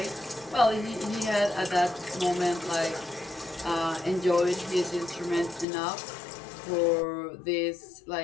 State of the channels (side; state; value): right; drops out; at 5.7 s